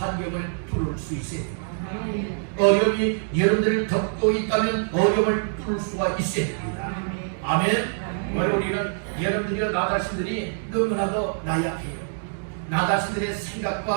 뚫을 수 있어야 됩니다. 어려움이 여러분들을 덮고 있다면 어려움을 뚫을 수가 있어야 됩니다. 아멘. 오늘 우리는 여러분들이와 나 자신들이 너무나도 나약해요. 나 자신들의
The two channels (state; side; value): silent; left; digital silence